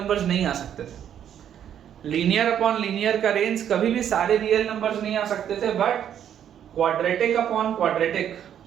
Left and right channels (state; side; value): quieter; left; 9.6 dB